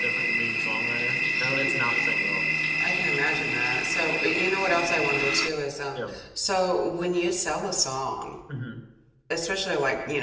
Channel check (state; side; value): identical; both; correlation 1.00